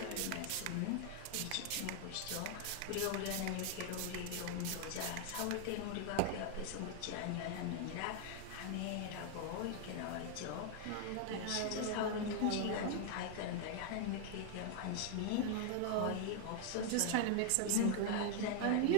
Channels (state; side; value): different; both; correlation 0.00